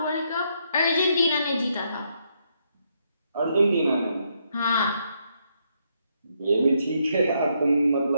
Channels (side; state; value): both; inverted; correlation -0.76